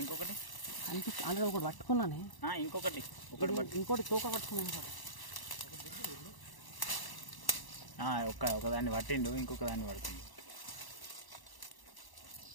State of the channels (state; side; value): late; right; 1.0 ms